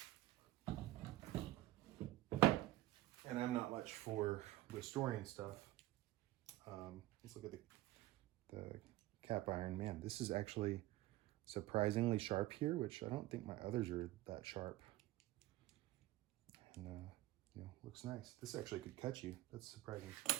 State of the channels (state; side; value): quieter; left; 16.3 dB